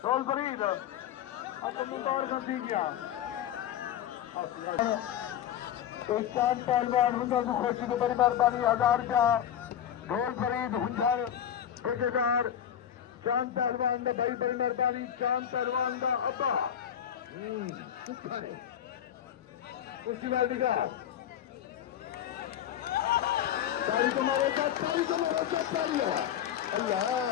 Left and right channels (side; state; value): right; quieter; 10.0 dB